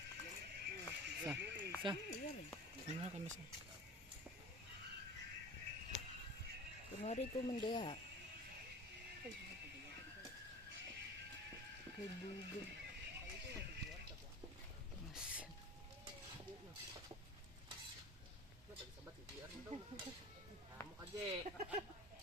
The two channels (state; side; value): normal; both; correlation 0.36